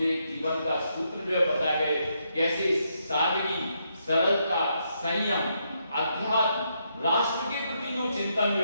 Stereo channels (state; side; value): inverted; both; correlation -0.79